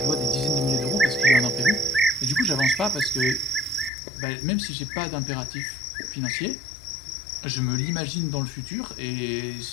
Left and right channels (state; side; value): drops out; right; at 3.9 s